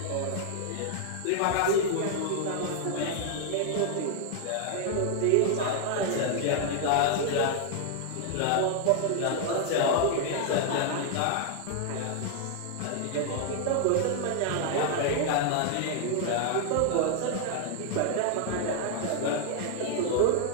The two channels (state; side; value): different; both; correlation 0.00